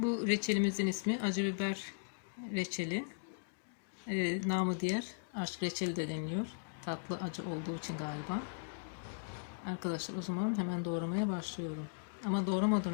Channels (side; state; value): right; silent; digital silence